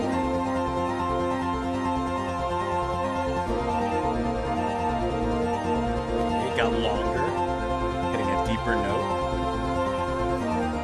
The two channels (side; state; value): both; identical; correlation 1.00